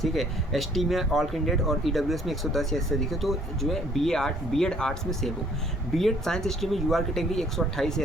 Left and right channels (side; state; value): both; normal; correlation 0.60